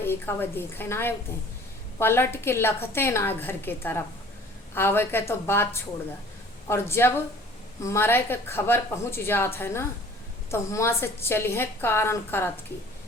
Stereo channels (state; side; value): normal; both; correlation 0.50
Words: वह देखे ना आए उते। पलट के लखते ना घर के तरफ आवे के तो बात छोड़ दा। और जब मरे के खबर पहुँच जात है ना, तो हुआ से चलिए कारण करत की